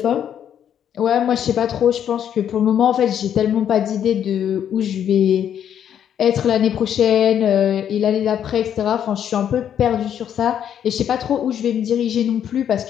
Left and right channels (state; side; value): quieter; right; 9.4 dB